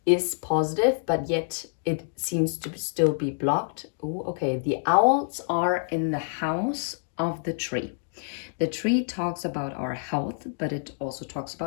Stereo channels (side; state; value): right; silent; digital silence